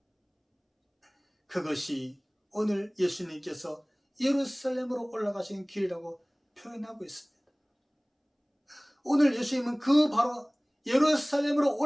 그것이 오늘 예수님께서 예루살렘으로 올라가신 길이라고 표현하고 있습니다. 오늘 예수님은 그 바로 예루살렘으로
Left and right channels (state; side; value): identical; both; correlation 1.00